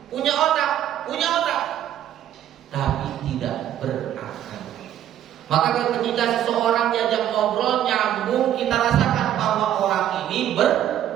punya otak, tapi tidak berakal. Maka ketika seseorang diajak ngobrol nyambung, kita rasakan bahwa orang ini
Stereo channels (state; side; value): quieter; left; 11.2 dB